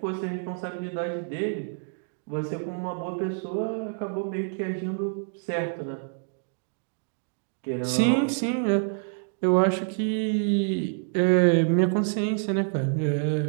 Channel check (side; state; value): left; silent; 60 dB below the other